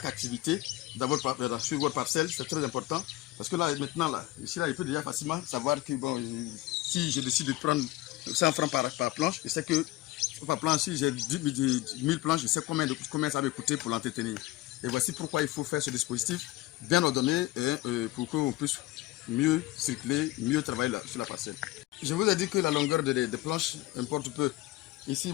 activité sur votre parcelle. C'est très important. Parce que là, maintenant, ici, il peut déjà facilement savoir que bon, si je décide de prendre 100 francs par planche, je sais que par planche, si j'ai 1000 planches, je sais combien ça va coûter pour l'entretenir. Et voici pourquoi il faut faire ce dispositif bien ordonné pour qu'on puisse mieux circuler, mieux travailler sur la parcelle. je vous ai dit que la longueur des planches importe peu. Ici,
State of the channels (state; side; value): quieter; right; 17.5 dB